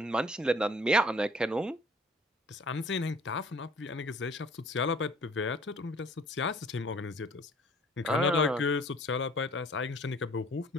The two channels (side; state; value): both; normal; correlation 0.54